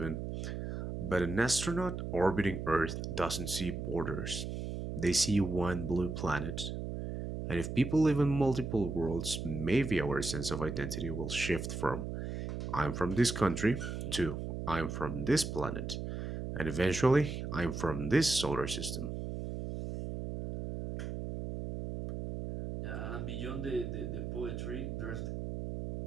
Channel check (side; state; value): right; noise; hum, 5 dB below the sound